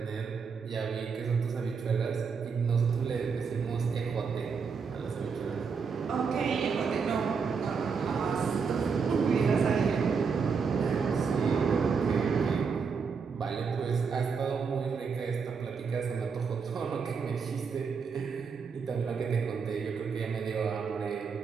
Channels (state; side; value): quieter; left; 5.7 dB